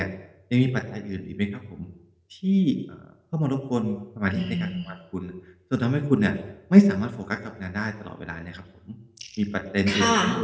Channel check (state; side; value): identical; both; correlation 1.00